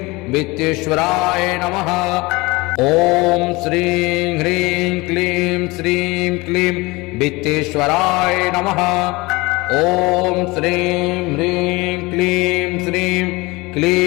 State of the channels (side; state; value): right; quieter; 23.4 dB